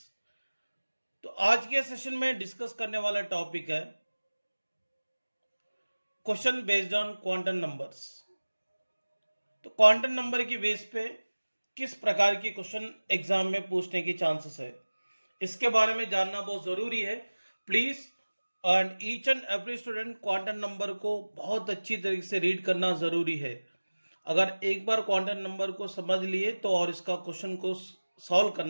तो आज के सेशन में डिस्कस करने वाला टॉपिक है question based on quantum numbers. तो क्वांटम नंबर की बेस पे किस प्रकार की क्वेश्चन एग्जाम में पूछने की चांसेस है, इसके बारे में जानना बहुत ज़रूरी है। Please and each and every student quantum number को बहुत अच्छी तरीके से रीड करना ज़रूरी है। अगर एक बार क्वांटम नंबर को समझ लिए तो और इसका क्वेश्चन को सॉल्व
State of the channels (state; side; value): inverted; both; correlation -1.00